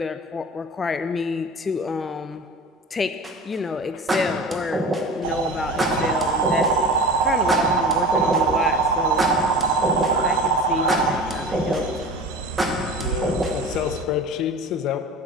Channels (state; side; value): normal; both; correlation 0.35